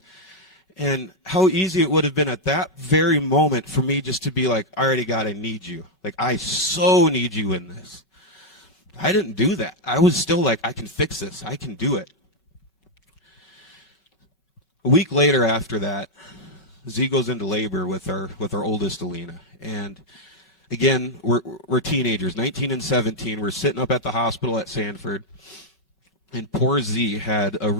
how easy it would have been at that very moment for me just to be like, all right, God, I need you. Like, I so need you in this. I didn't do that. I was still like, I can fix this. I can do it. A week later after that, Z goes into labor with our oldest, Alina. And again, we're teenagers, 19 and 17. We're sitting up at the hospital at Sanford. And poor Z had a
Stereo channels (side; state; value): both; normal; correlation 0.01